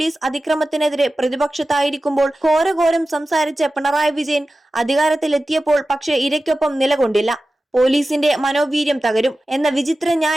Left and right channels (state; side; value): normal; both; correlation 0.95